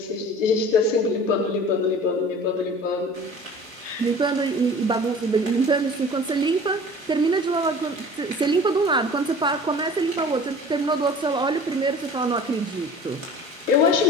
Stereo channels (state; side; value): normal; both; correlation 0.43